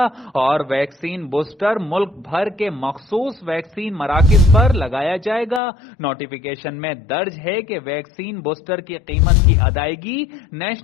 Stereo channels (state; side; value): drops out; right; at 5.6 s